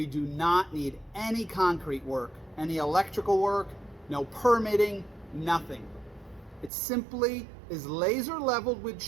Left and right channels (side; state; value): left; drops out; at 6.7 s